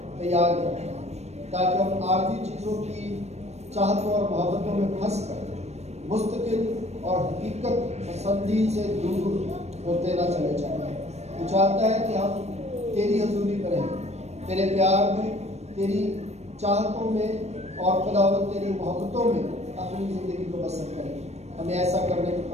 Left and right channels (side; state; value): left; late; 0.31 ms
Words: تیار کرتا ہے تاکہ ہم عارضی چیزوں کی چاہتوں اور محبتوں میں پھنس کر مستقل اور حقیقت پسندی سے دور ہوتے نہ چلے جائیں۔ تو چاہتا ہے کہ ہم تیری حضوری میں رہیں، تیرے پیار میں، تیری چاہتوں میں اور خداوند تیری محبتوں میں اپنی زندگی کو بسر کریں۔ ہمیں ایسا کرنے کی